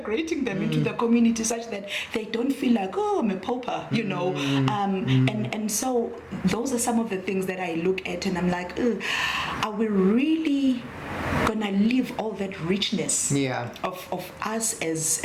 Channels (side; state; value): both; identical; correlation 1.00